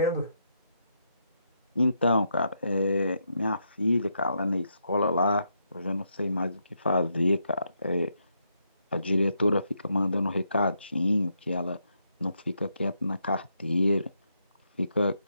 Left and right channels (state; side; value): inverted; both; correlation -0.80